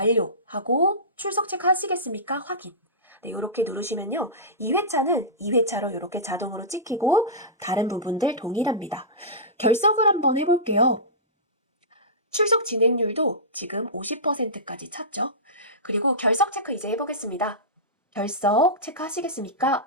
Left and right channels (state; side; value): normal; both; correlation -0.18